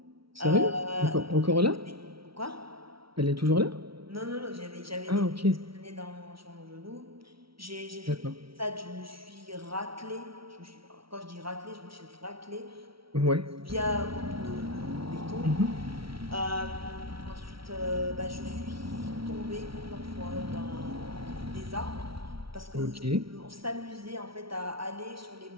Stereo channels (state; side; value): late; left; 0.75 ms